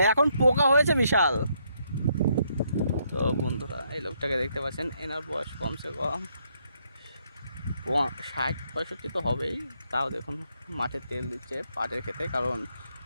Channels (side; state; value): both; inverted; correlation -0.74